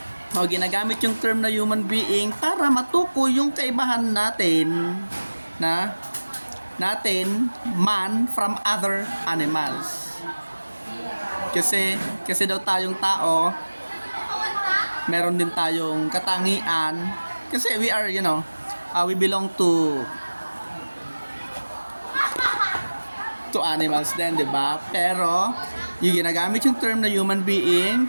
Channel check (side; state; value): both; inverted; correlation -1.00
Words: O, ginagamit yung term na human being para matukoy yung kaibahan natin man from other animals. Kasi daw tayong tao, meron din tayong katangian. Kasi we are, we belong to animals din, di ba? Pero, yung ginagamit yung term na human being